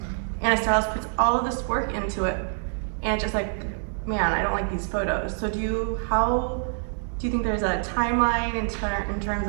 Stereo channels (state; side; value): silent; left; 61 dB below the other